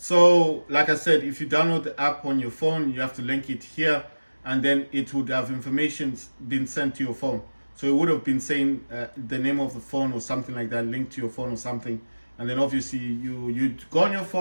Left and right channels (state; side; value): inverted; both; correlation -1.00